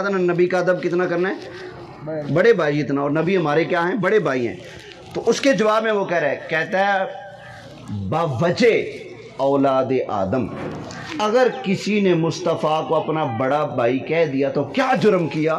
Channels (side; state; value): both; identical; correlation 1.00